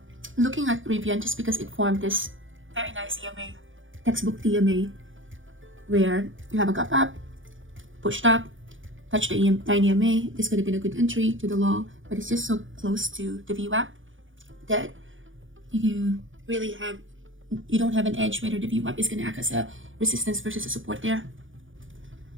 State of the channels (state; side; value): late; left; 0.57 ms